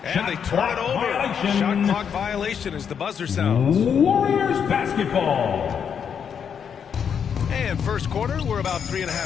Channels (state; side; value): quieter; right; 7.5 dB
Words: And they turn it over. Violation. Shot clock violation as the buzzer sounds. Warriors basketball. And first quarter, we're about